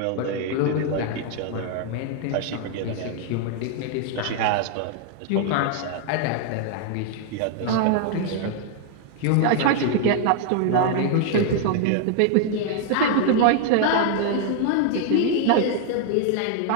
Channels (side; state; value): both; different; correlation 0.00